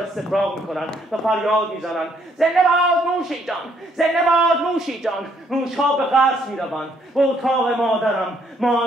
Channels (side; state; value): both; normal; correlation 0.68